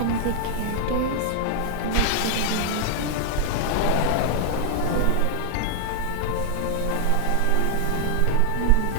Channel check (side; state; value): both; different; correlation 0.00